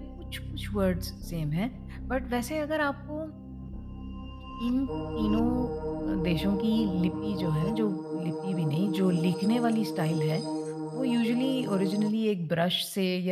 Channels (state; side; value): identical; both; correlation 1.00